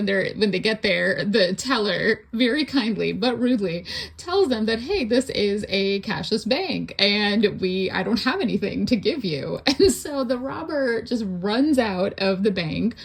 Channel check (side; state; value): both; identical; correlation 1.00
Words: they get there, the teller very kindly but rudely tells them that, hey, this is a cashless bank and I don't have anything to give you. And so the robber just runs out of the bank